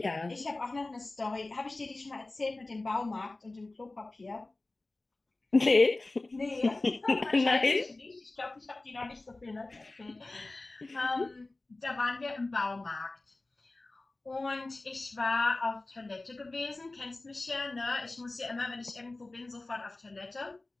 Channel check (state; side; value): quieter; right; 3.0 dB